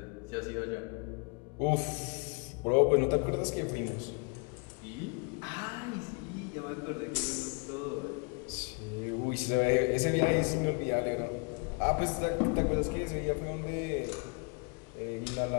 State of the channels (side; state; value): right; quieter; 35.4 dB